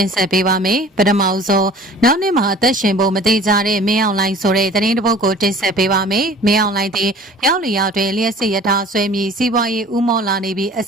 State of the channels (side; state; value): both; normal; correlation 0.46